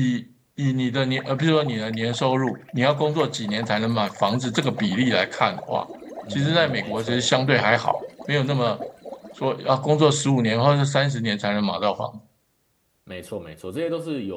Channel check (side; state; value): both; identical; correlation 1.00